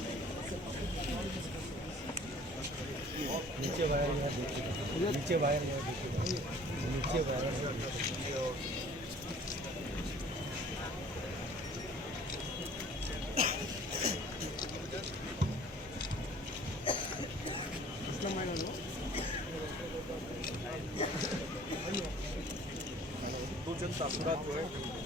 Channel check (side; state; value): both; normal; correlation 0.51